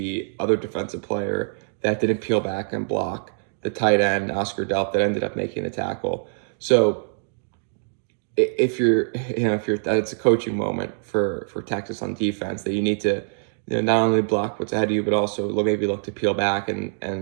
other defensive player that didn't peel back and block the tight end, Oscar Delp, that ended up making the tackle. So if you're that's a coaching moment for Texas on defense, that you need to not only block what's ahead of you, but also maybe look to peel back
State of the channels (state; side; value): silent; left; digital silence